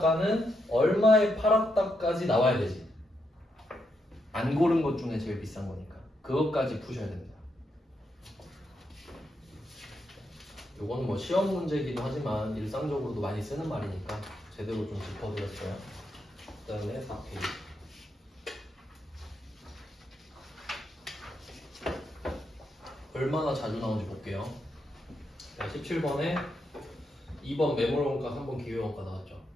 얼마에 팔았다까지 나와야 되지. 안 고른 것 중에 제일 비싼 거니까. 그것까지 푸셔야 됩니다. 요거는 뭐 시험 문제이기도 하지만 일상적으로도 많이 쓰는 말이니까 제대로 좀 짚어드렸어요. 그 다음에 4페이지. 얼마나 자주 나오는지 볼게요. 17번에 2번 매몰원가, 3번 기회원가 나왔죠.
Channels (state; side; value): normal; both; correlation 0.81